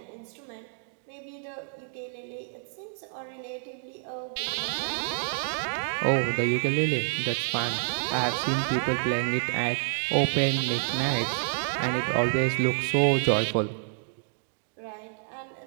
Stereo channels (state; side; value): silent; left; digital silence